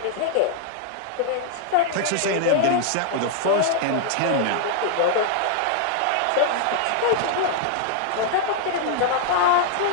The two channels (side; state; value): both; different; correlation 0.00